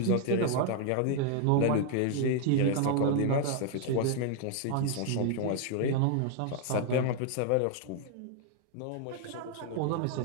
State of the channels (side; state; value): both; different; correlation 0.00